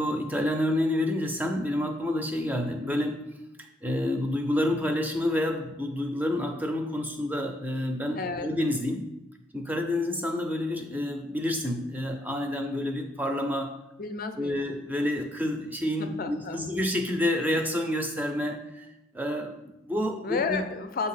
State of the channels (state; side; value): normal; both; correlation 0.71